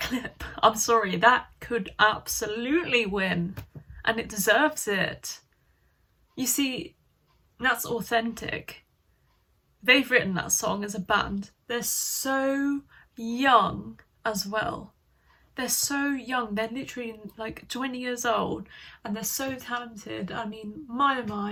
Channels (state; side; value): identical; both; correlation 1.00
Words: I'm sorry, that could absolutely win, and it deserves it. You see, that's authentic. They've written that song as a band. They're so young as well. They're so young, they're literally like 20 years old, and they're so talented. I mean, my oh